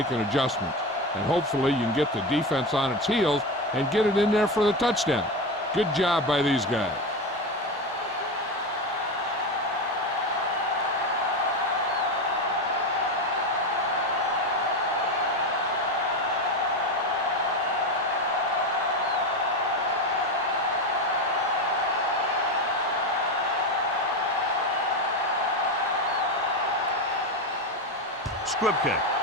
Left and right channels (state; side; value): normal; both; correlation 0.17